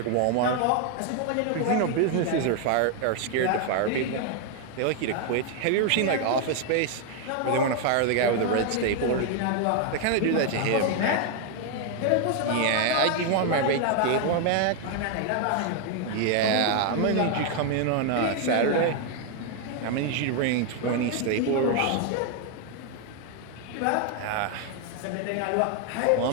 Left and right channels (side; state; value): both; different; correlation 0.00